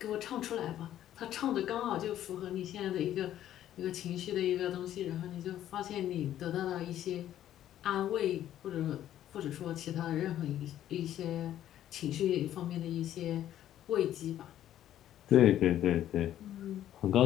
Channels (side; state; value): right; quieter; 11.9 dB